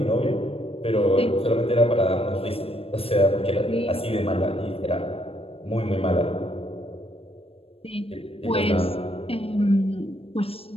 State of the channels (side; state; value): right; late; 0.28 ms